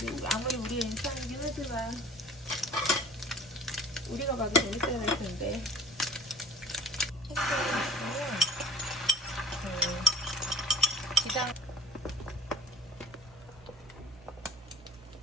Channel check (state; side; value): normal; both; correlation 0.46